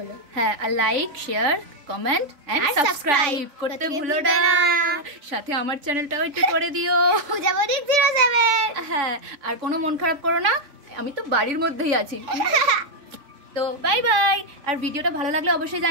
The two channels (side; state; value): left; late; 3.5 ms